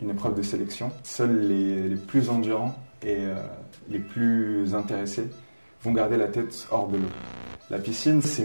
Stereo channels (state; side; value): inverted; both; correlation -1.00